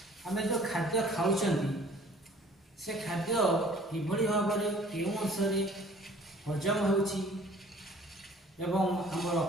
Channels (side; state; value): both; normal; correlation 0.52